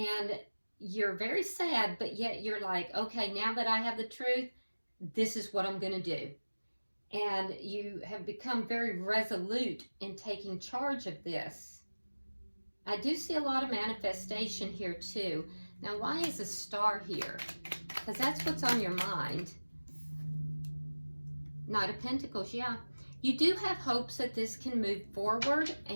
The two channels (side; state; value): both; inverted; correlation -1.00